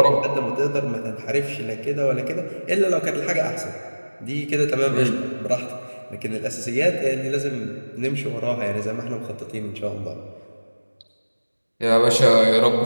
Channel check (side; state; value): both; inverted; correlation -1.00